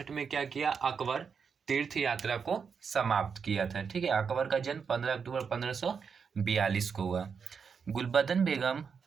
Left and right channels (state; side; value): quieter; left; 6.1 dB